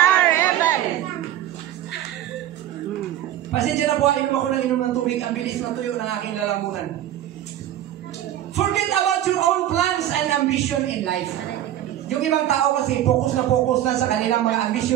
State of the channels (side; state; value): left; quieter; 12.3 dB